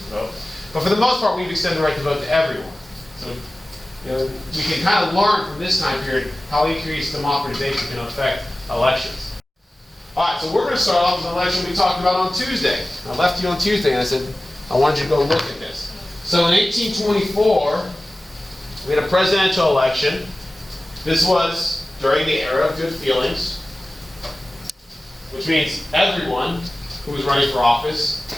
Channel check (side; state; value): both; normal; correlation 0.96